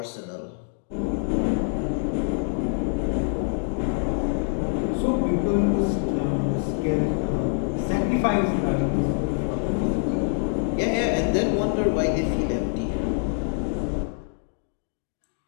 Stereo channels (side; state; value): right; silent; 59 dB below the other